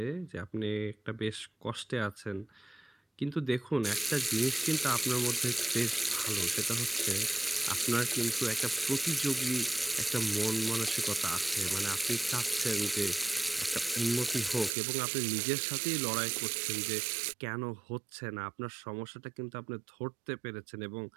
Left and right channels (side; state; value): left; drops out; at 14.7 s